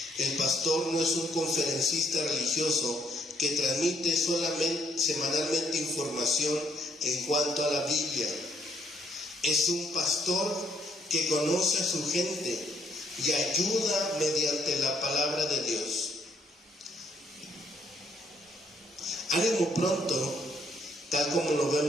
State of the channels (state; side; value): normal; both; correlation 0.69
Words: El pastor no es un conferencista religioso que transmite semanalmente información en cuanto a la Biblia. Es un pastor que conoce a su gente y ayuda mediante la palabra de Dios. Ánimo pronto, tal como lo